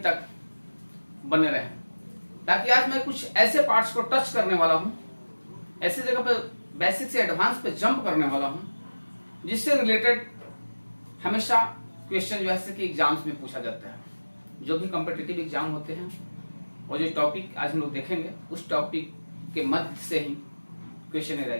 तक बने रहें, ताकि आज मैं कुछ ऐसे पार्ट्स को टच करने वाला हूं, ऐसे जगह पे बेसिक से एडवांस पे जंप करने वाला हूं, जिससे रिलेटेड हमेशा क्वेश्चन जो है कि एग्जाम्स में पूछा जाता है। जो भी कॉम्पिटिटिव एग्जाम होते हैं और जो टॉपिक आज हम लोग देखेंगे उस टॉपिक के मध्य से ही क्वेश्चन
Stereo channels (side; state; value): both; inverted; correlation -1.00